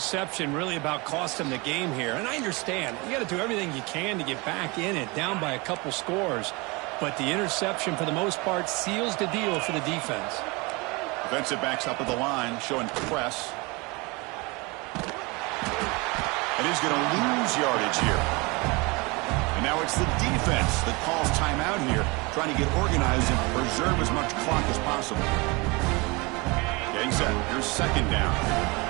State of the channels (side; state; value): left; quieter; 26.5 dB